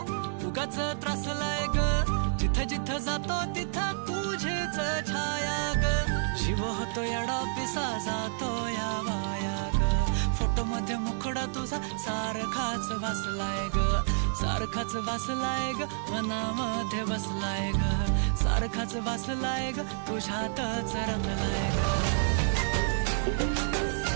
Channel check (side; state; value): left; silent; 58 dB below the other